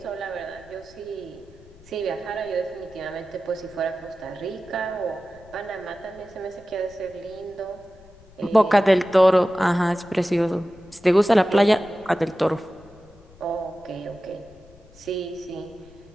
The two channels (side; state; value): left; noise; rumble, 24 dB below the sound